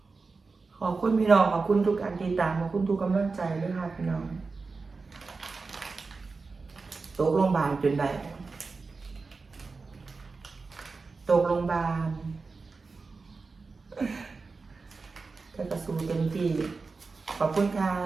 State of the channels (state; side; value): quieter; left; 4.2 dB